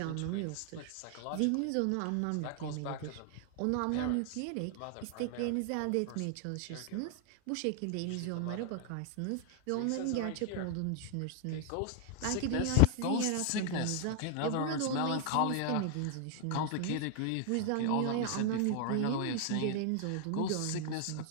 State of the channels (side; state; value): both; different; correlation 0.00